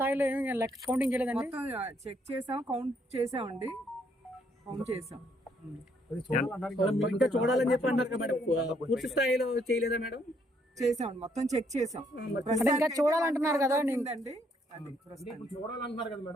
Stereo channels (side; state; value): both; normal; correlation 0.70